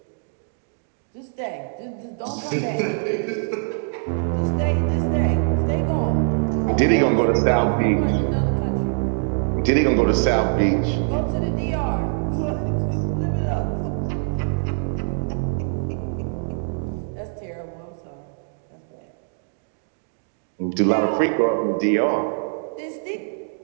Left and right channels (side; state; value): left; silent; digital silence